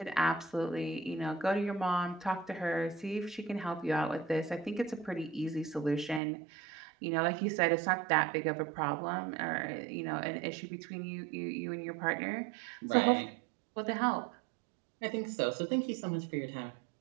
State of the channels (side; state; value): left; drops out; at 6.2 s